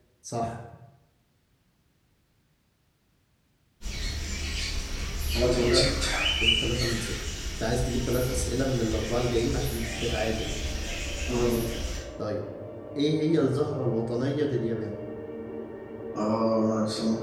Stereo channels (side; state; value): both; identical; correlation 1.00